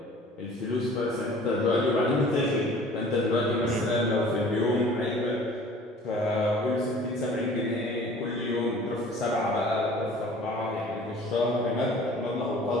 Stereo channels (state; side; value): normal; both; correlation 0.48